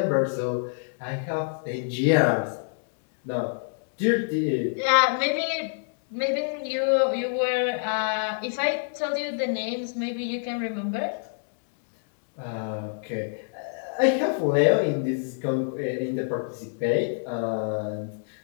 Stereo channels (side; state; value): right; silent; digital silence